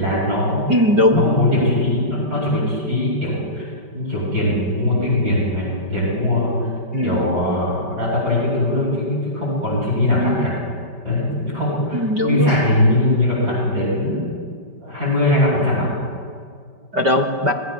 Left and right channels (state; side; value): late; left; 5.2 ms